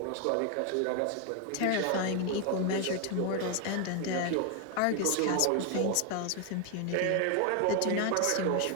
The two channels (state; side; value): different; both; correlation 0.01